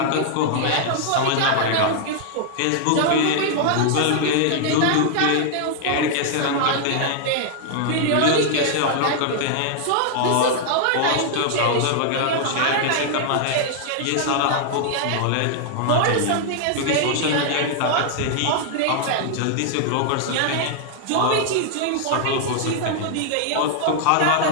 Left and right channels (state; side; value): different; both; correlation 0.00